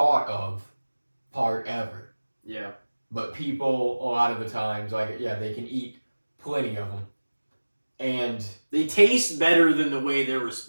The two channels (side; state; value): both; inverted; correlation -1.00